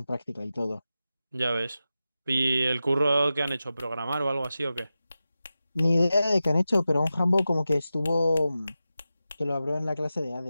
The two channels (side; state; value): both; inverted; correlation -0.93